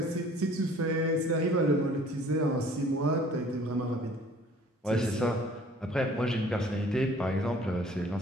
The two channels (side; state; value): both; normal; correlation 0.53